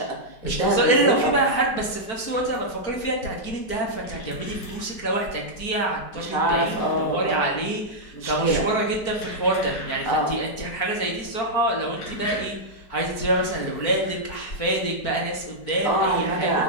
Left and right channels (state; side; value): late; right; 4.5 ms